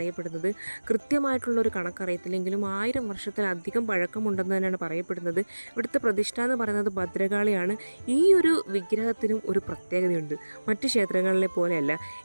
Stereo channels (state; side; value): inverted; both; correlation -1.00